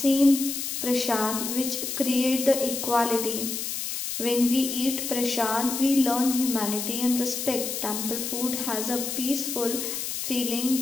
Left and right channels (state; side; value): noise; left; hiss, 4 dB below the sound